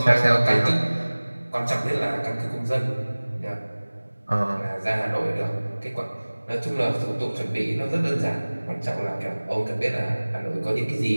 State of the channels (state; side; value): inverted; both; correlation -1.00